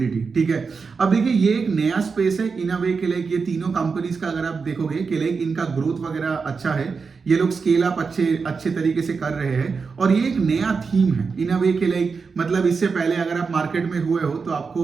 ठीक है, अब देखिए ये एक नया स्पेस है इन अ वे के लिए। ये तीनों कंपनीज का अगर आप देखोगे कि लाइक इनका ग्रोथ वगैरह अच्छा है, ये लोग स्केल अप अच्छे तरीके से कर रहे हैं, और ये एक नया थीम है इन अ वे के लिए। मतलब इससे पहले अगर आप मार्केट में हुए हो तो आपको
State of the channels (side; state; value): left; quieter; 5.0 dB